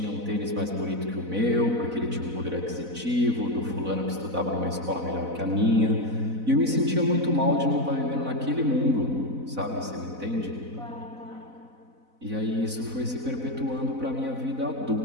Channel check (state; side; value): late; left; 4.0 ms